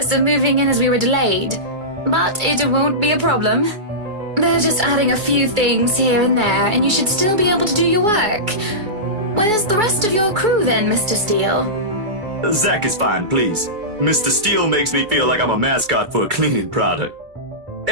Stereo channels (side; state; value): left; late; 2.4 ms